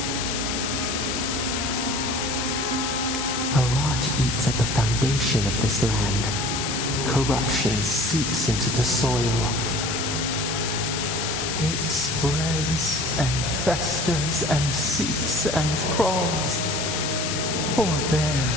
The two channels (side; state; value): left; noise; hiss, 2 dB below the sound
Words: A rot eats at the foundation of this land. Corruption seeps into the soil. It spreads and festers and seeps and crawls. Poor bear,